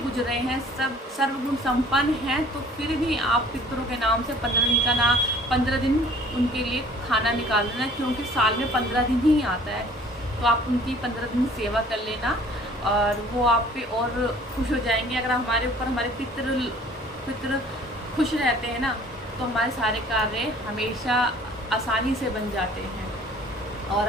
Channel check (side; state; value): both; normal; correlation 0.52